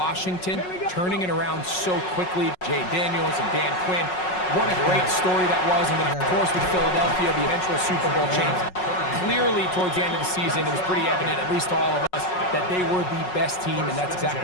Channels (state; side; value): late; right; 5.5 ms